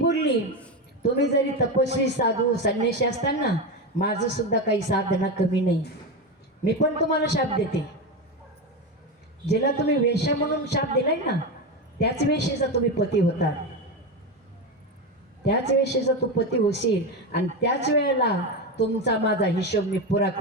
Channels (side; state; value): both; normal; correlation 0.16